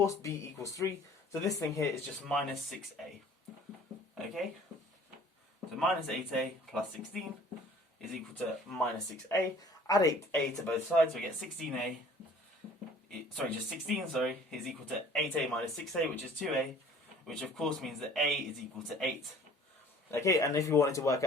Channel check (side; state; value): both; normal; correlation 0.51